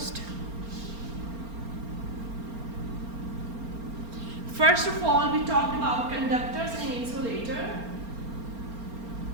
First of all, we talked about conductors and insulator.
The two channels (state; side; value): late; left; 4.3 ms